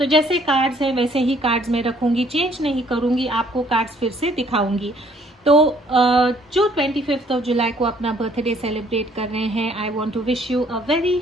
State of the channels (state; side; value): normal; both; correlation 0.62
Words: जैसे कार्ड्स हैं वैसे ही कार्ड्स मैं रखूँगी, चेंज नहीं करूँगी, आपको कार्ड्स फिर से दिखाऊँगी। तो जो 25 ऑफ जुलाई को अपना बर्थडे सेलिब्रेट कर रहे हैं, I want to wish you a very